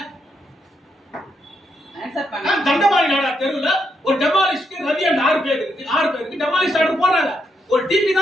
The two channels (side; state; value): both; normal; correlation 0.79